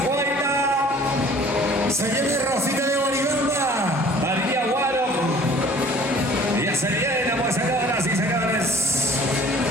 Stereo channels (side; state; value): both; normal; correlation 0.51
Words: Se viene Rosita de Boribamba. María Guaro. Ya se viene, pues, señoras y señores.